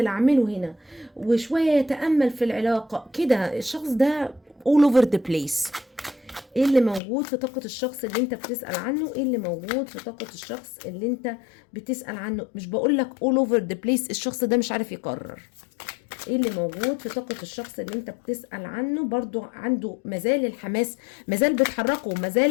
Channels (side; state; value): right; drops out; at 7.0 s